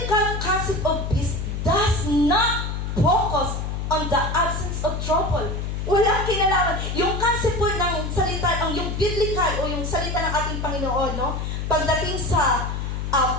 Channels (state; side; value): noise; left; hum, 3 dB below the sound